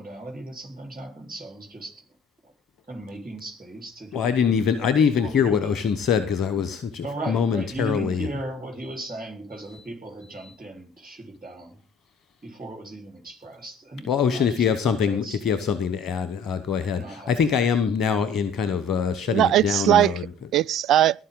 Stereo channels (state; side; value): normal; both; correlation 0.49